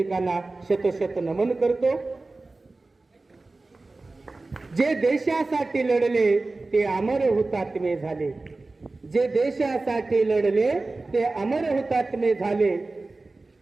शतशत नमन करतो. जे देशासाठी लढले ते अमर हुतात्मे झाले, जे देशासाठी लढले ते अमर हुतात्मे झाले.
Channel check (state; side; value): quieter; left; 3.3 dB